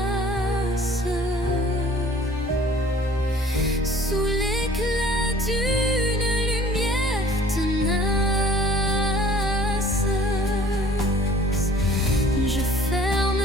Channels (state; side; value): normal; both; correlation 0.52